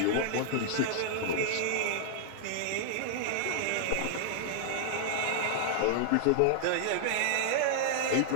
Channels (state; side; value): different; both; correlation -0.01